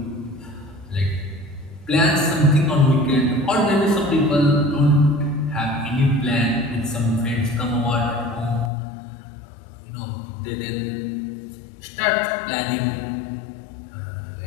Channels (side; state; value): right; drops out; at 8.7 s